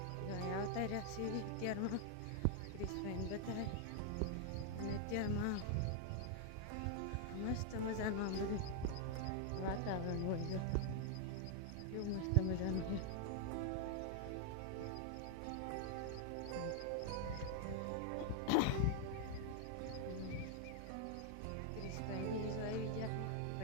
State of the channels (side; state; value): both; different; correlation -0.01